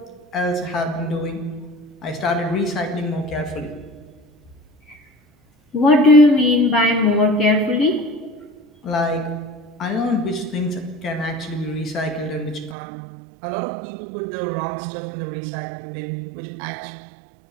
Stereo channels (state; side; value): drops out; left; at 12.8 s